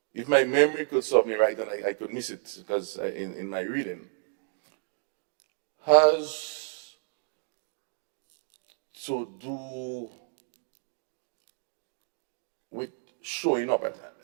if my memory could serve me right, and I could miss it because in my reading, has to do with showing up.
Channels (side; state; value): left; silent; digital silence